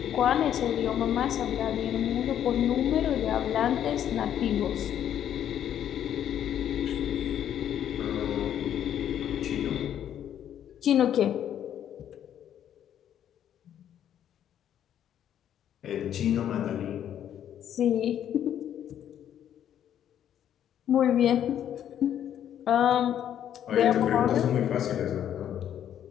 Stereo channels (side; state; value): right; quieter; 10.2 dB